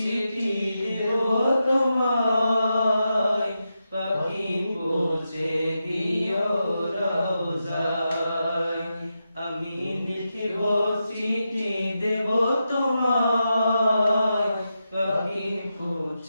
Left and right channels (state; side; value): inverted; both; correlation -0.88